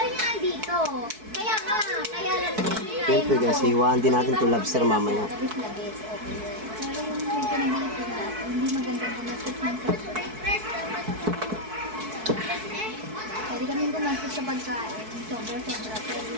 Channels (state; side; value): late; left; 4.6 ms